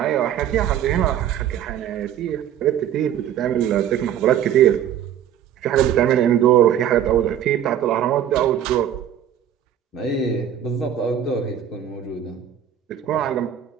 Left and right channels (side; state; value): left; quieter; 9.9 dB